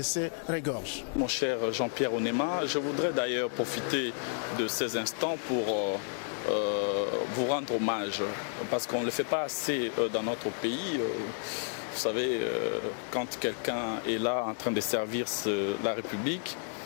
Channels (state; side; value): silent; right; 57 dB below the other